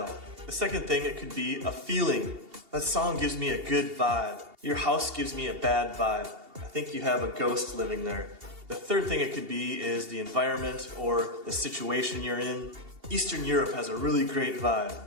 The second thing, it could be a feeling. That song gives me a good vibe. Your house gives me a bad vibe. I think you have a ghost living there. The third thing it could be is the environment or the situation you're in. Eastern Europe has a really great vibe.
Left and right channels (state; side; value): late; left; 2.8 ms